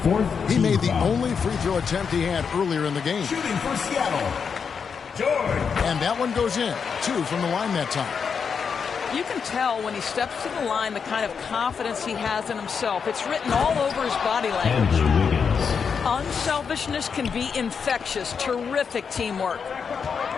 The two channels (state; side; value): quieter; right; 6.2 dB